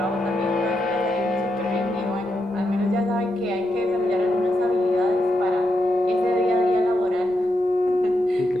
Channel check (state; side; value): noise; left; rumble, 30 dB below the sound